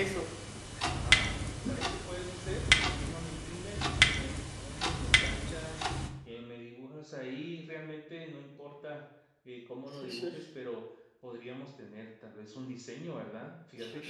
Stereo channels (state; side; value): identical; both; correlation 1.00